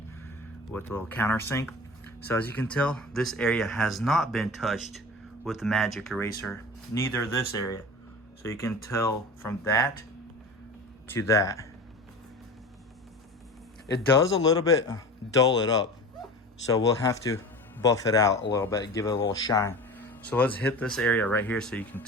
with a little countersink. So as you can tell, this area has not been touched with the magic eraser, neither this area. So you can tell from that to that. It does a little bit dull it up, so we'll have to buff it out a little bit, give it a little shine. So let's hit this area right here so you can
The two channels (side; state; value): both; normal; correlation 0.34